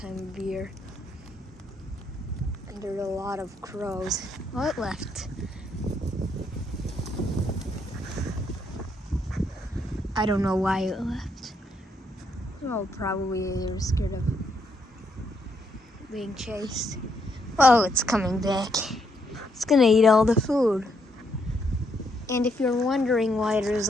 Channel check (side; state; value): both; normal; correlation 0.75